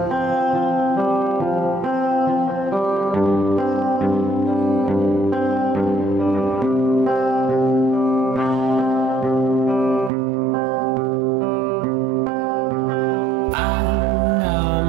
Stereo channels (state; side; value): drops out; left; at 10.1 s